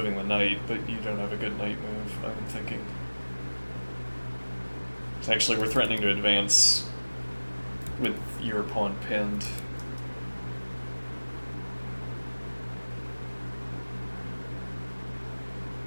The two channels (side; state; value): both; inverted; correlation -1.00